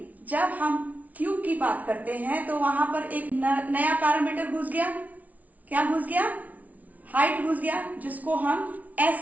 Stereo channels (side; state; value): left; late; 0.072 ms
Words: जब हम क्यूब की बात करते हैं तो वहां पर एक नया पैरामीटर घुस गया। क्या घुस गया? हाइट घुस गया, जिसको हम s